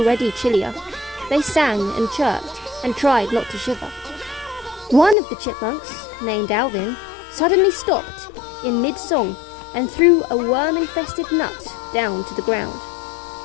chillier. They sang and chirped and tried not to shiver. One of the chipmunks, named Alvin, suddenly stopped in mid-song and threw a worm-infested nut down to the ground.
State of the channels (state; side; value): drops out; right; at 5.2 s